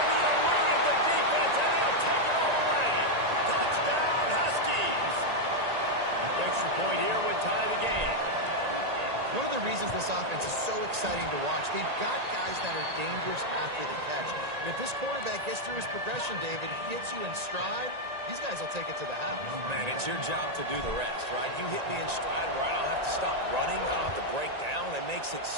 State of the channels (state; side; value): late; left; 1.9 ms